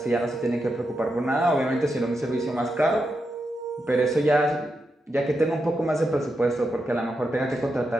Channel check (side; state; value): both; normal; correlation 0.86